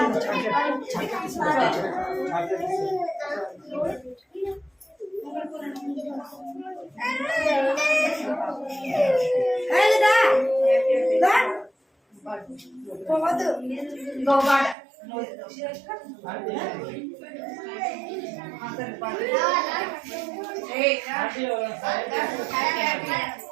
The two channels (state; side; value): drops out; left; at 14.8 s